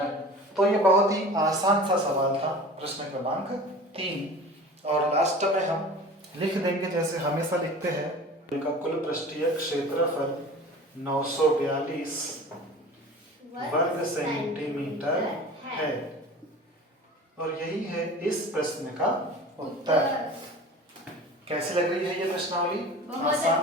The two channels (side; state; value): both; normal; correlation 0.39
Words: तो ये बहुत ही आसान सा सवाल था, प्रश्न क्रमांक 3। और लास्ट में हम लिख देंगे जैसे हमेशा लिखते हैं, का कुल पृष्ठीय क्षेत्रफल 942 वर्ग सेंटीमीटर है, और यही है इस प्रश्न का उत्तर। कैसी लग रही है ये प्रश्नावली?